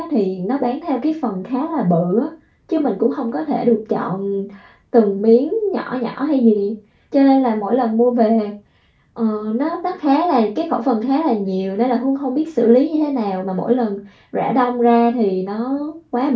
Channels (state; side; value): identical; both; correlation 1.00